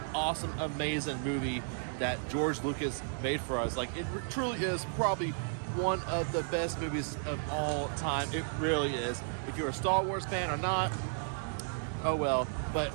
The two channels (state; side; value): silent; left; digital silence